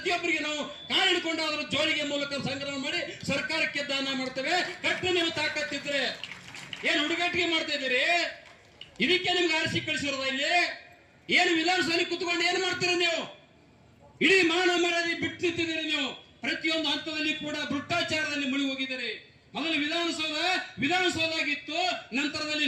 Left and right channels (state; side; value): identical; both; correlation 1.00